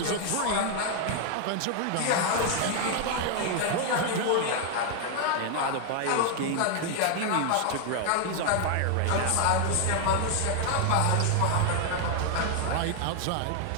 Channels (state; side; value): different; both; correlation 0.00